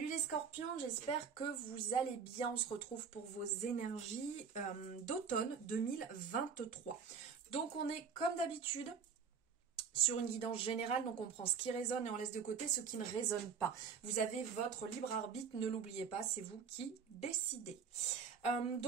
les scorpions, j'espère que vous allez bien. On se retrouve pour vos énergies d'automne 2023. Donc on est comme d'habitude sur une guidance générale, donc on prend ce qui résonne et on laisse de côté ce qui ne résonne pas. Vous avez votre libre arbitre, ne l'oubliez pas, c'est vous qui décidez.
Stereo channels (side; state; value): left; quieter; 6.4 dB